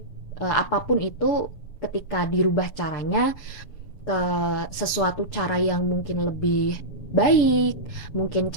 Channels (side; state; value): right; late; 7.1 ms